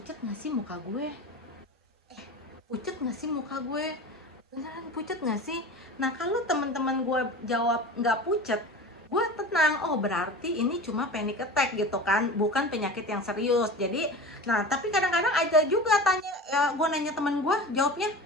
nggak sih muka gue, pucet nggak sih muka gue, beneran pucet nggak sih? Nah, kalau teman-teman gue jawab nggak pucet, gue tenang, oh berarti ini cuma panic attack gitu kan, bukan penyakit yang serius. Jadi, nah tapi kadang-kadang ada juga tanya, gue nanya teman gue, jawabnya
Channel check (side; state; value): both; normal; correlation 0.34